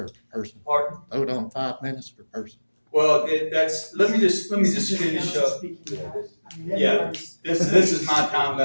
person. Pardon? Vote on 5 minutes per person. Well, let me just finish up. Yeah, this is my time,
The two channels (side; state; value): both; inverted; correlation -1.00